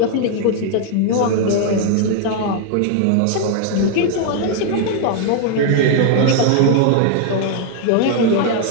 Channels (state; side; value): different; both; correlation 0.00